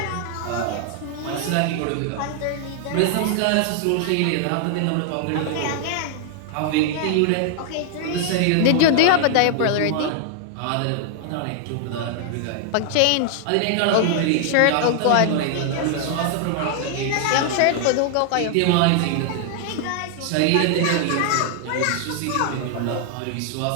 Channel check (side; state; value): both; different; correlation 0.00